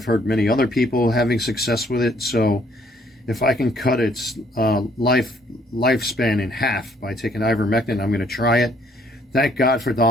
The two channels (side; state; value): both; normal; correlation 0.64